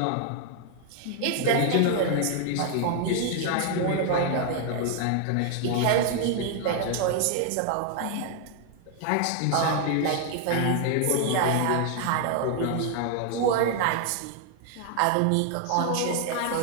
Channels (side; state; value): both; different; correlation 0.00